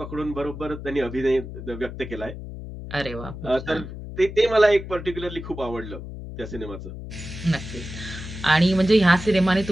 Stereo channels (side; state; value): left; noise; hum, 10 dB below the sound